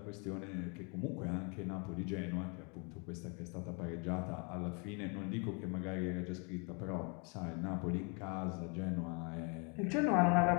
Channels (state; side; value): quieter; right; 35.0 dB